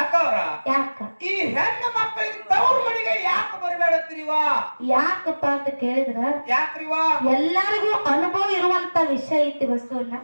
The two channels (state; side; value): inverted; both; correlation -1.00